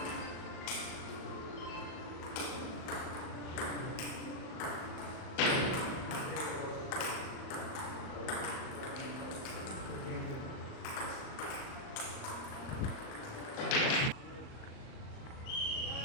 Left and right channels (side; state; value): right; late; 38 ms